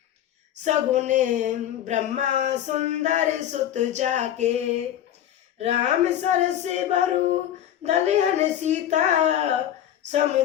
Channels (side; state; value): right; quieter; 11.2 dB